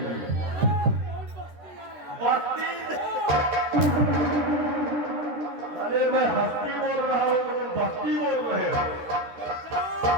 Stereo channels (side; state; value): left; late; 13 ms